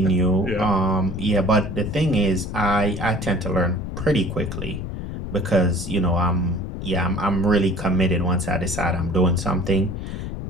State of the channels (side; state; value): left; noise; rumble, 6 dB below the sound